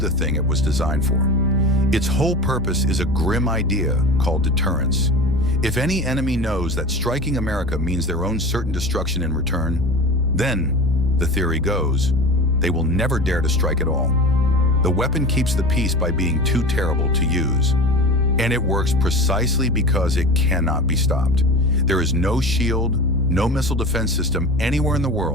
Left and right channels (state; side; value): normal; both; correlation 0.33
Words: thing it was designed for. Its whole purpose is a grim idea called deterrence. If any enemy knows that striking America means their own certain destruction in return, then, the theory goes, they will never dare to strike at all. The weapon keeps the peace by being too terrible to use. And it works precisely because it cannot be stopped. There is no shield, no missile defense system anywhere in the